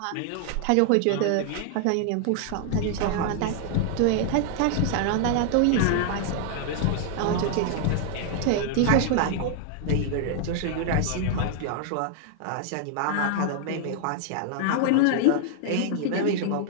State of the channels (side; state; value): both; different; correlation 0.00